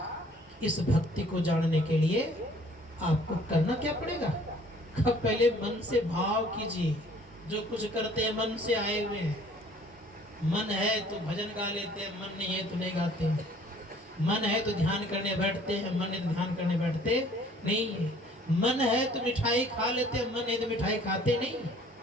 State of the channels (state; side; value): normal; both; correlation 0.56